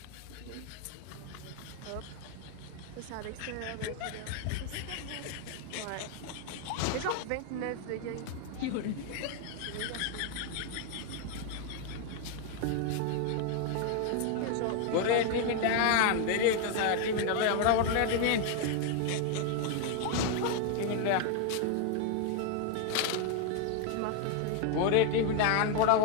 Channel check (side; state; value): both; different; correlation 0.01